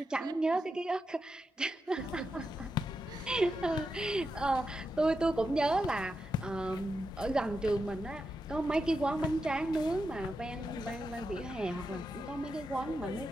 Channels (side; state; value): both; normal; correlation 0.87